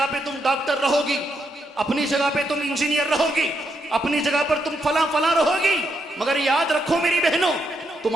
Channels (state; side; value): normal; both; correlation 0.80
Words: पे तुम डॉक्टर रहोगी, अपनी जगह पे तुम इंजीनियर रहोगी, अपनी जगह पर तुम फला फला रहोगी, मगर याद रखो मेरी बहनों,